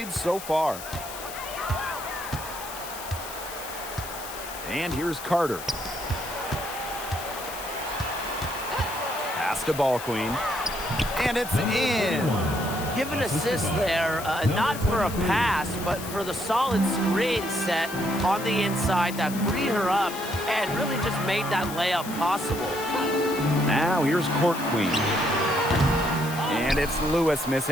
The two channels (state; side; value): noise; left; hiss, 11 dB below the sound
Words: so far. And here's Carter. Pass to Ball Queen. And it's in. Give an assist there, not for a pass, but for the solid screen set on the inside that freed her up and really just made that layup possible. Now here's Court Queen. And it's Lewis